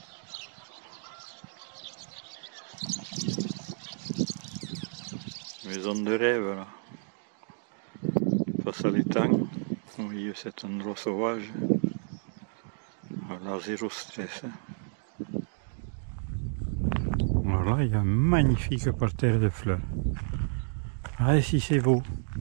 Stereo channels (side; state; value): left; silent; 57 dB below the other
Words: Maison de rêve là. Face à l'étang, au milieu de cet endroit sauvage. Voilà, zéro stress. Voilà, il y a un magnifique parterre de fleurs. Ah, si c'est beau.